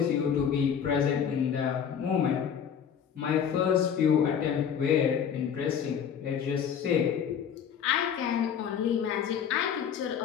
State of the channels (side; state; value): right; quieter; 8.0 dB